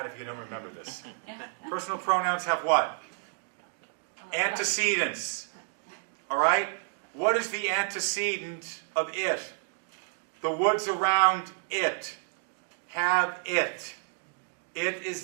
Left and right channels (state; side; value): silent; left; digital silence